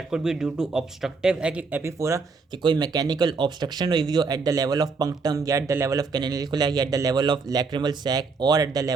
could be due to obstructive epiphora, कि कोई मैकेनिकल ऑब्स्ट्रक्शन हुई हो at the level of punctum या at the level of canalicula या at the level of lacrimal sac और at the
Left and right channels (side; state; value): left; quieter; 4.5 dB